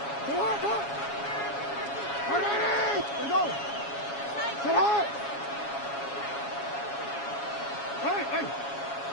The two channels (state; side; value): late; right; 7.2 ms